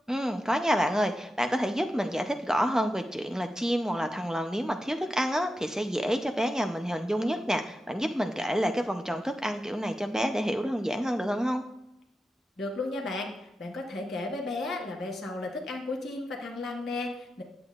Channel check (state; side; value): normal; both; correlation 0.90